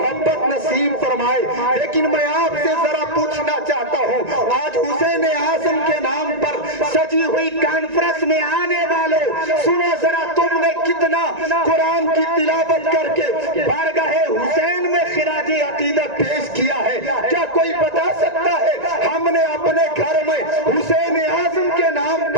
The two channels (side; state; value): left; late; 1.9 ms